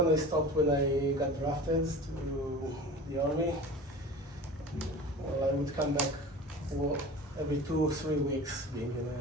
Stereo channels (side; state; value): both; normal; correlation 0.36